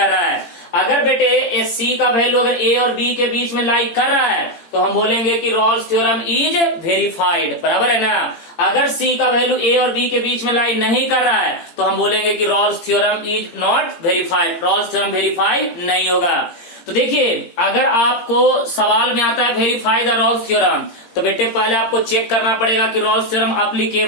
रहा है। अगर बेटे c का वैल्यू अगर a और b के बीच में लाई कर रहा है तो हम बोलेंगे कि रॉल्स थ्योरम इज वेरीफाइड, बराबर है ना। अगर c का वैल्यू a और b के बीच में लाई नहीं कर रहा है तो हम बोलेंगे कि Rolle's theorem is not verified, Rolle's theorem verify नहीं होगा। तो देखिए, अगर आपको सवाल में आता है वेरीफाई द रॉल्स थ्योरम तो बेटे पहले आपको चेक करना पड़ेगा कि रॉल्स थ्योरम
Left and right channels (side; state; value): right; late; 17 ms